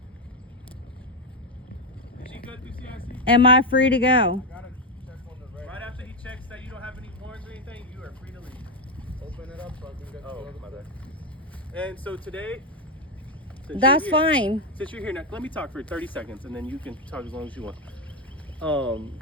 Is she good through CIC? Am I free to go? Gotta check on the red. Right after he checks that you don't have any warrants or anything, you are free to leave. Open it up so I can get Oh, the other my bad. And so today, since That's you're here- fine. Since you're here now, let me talk for 30 seconds and then you can talk as long as you want.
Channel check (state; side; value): normal; both; correlation 0.08